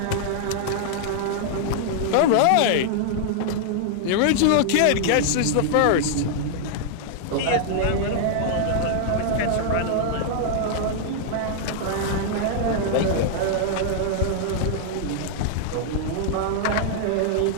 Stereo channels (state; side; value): different; both; correlation -0.01